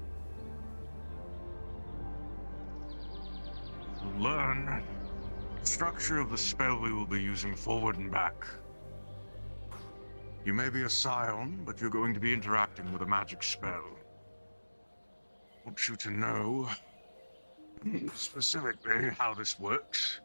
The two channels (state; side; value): inverted; both; correlation -1.00